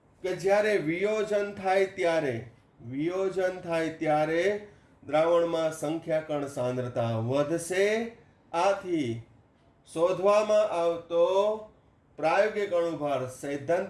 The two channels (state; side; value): identical; both; correlation 1.00